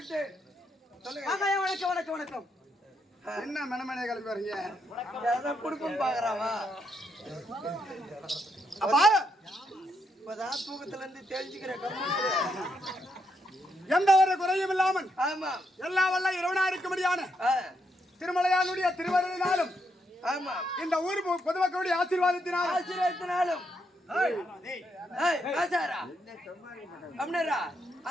வணக்கம் வணக்கம் வணக்கம். என்ன மனமனை கிளம்பி வரீங்க? குடுப்பம் பாக்குறாவா அப்பா இப்பதான் தூக்கத்துல இருந்து தெரிஞ்சுக்கிறேன். எந்த ஒரு குறையும் இல்லாமல் ஆமா எல்லா வல்ல இறைவனா இருக்கும்படியான திருமலையானுடைய திருவருளினாலும் ஆமா இந்த ஊர் பொதுமக்களுடைய ஆசீர்வாதத்தினாலும் ஆசீர்வாதத்தினாலும்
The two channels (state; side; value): normal; both; correlation 0.79